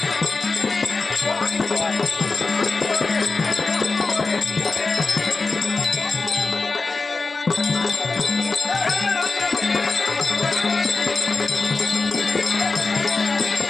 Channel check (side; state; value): right; quieter; 3.9 dB